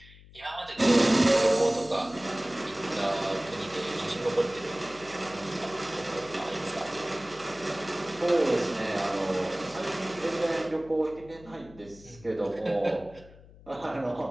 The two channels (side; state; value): left; noise; hum, 21 dB below the sound